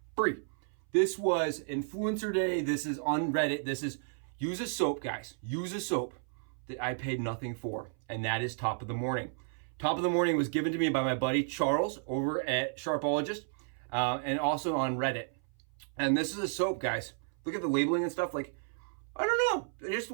free. This was Influencer Day. This is on Reddit. This is use a soap, guys. Use a soap that I paid nothing for, and that is Top of the Morning. Top of the Morning was given to me by my buddy Charles over at Sharpologist, and also on Reddit. And this is a soap, guys. Look at the labeling and stuff. Like, I don't know. It just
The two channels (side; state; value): left; silent; 56 dB below the other